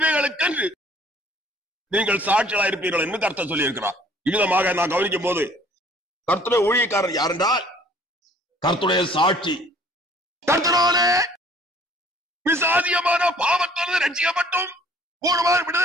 நீங்கள் சாட்சிகளாக இருப்பீர்கள் என்று கர்த்தர் சொல்லி இருக்கிறார். இவ்விதமாக நான் கவனிக்கும் போது கர்த்தருடைய ஊழியக்காரர் யார் என்றால் கர்த்தருடைய சாட்சி. கர்த்தராலே விசாதியமான பாவத்திலிருந்து ரட்சிக்கப்பட்டும் பூர்வமான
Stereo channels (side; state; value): both; normal; correlation 0.56